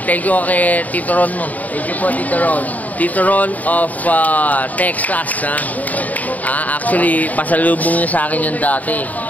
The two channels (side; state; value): right; late; 0.075 ms